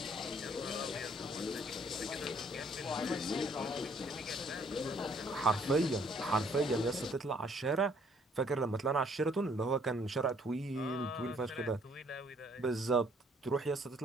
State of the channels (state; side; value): normal; both; correlation 0.63